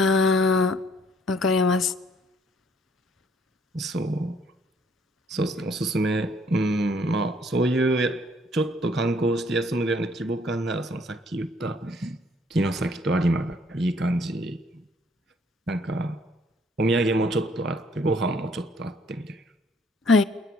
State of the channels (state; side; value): normal; both; correlation 0.63